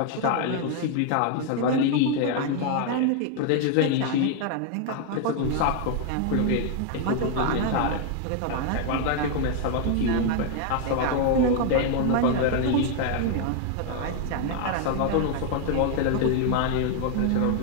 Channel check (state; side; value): different; both; correlation 0.00